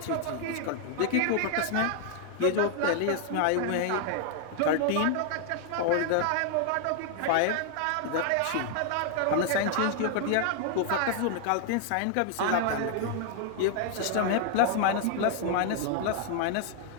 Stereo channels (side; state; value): both; different; correlation 0.00